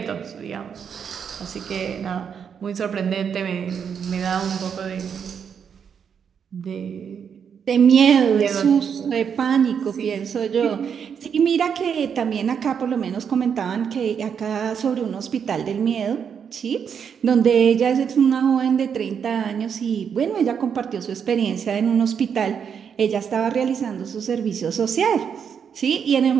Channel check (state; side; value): quieter; left; 7.3 dB